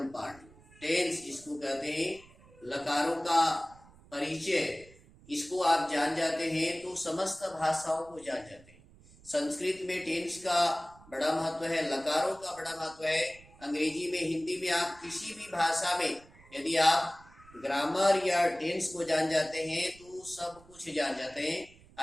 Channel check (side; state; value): right; noise; rumble, 24 dB below the sound